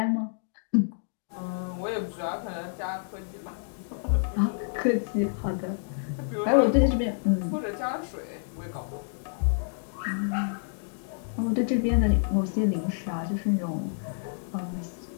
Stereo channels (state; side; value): silent; right; digital silence